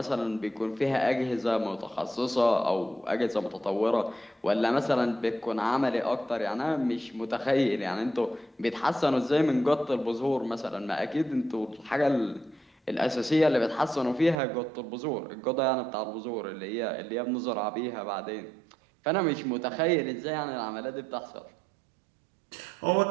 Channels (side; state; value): left; drops out; at 14.4 s